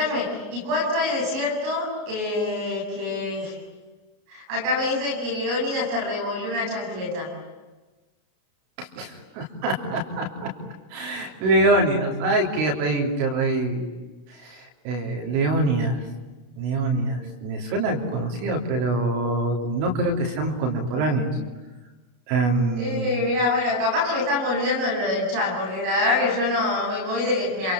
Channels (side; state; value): left; late; 33 ms